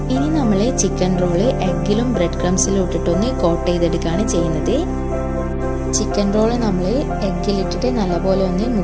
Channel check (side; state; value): both; identical; correlation 1.00